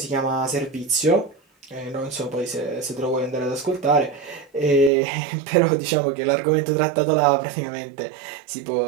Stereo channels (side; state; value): left; drops out; at 4.9 s